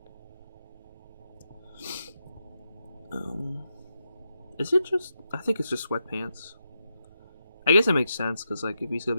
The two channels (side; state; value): both; inverted; correlation -0.84